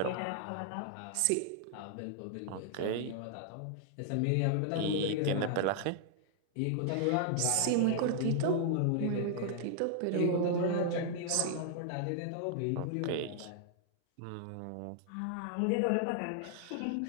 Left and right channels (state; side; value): different; both; correlation -0.01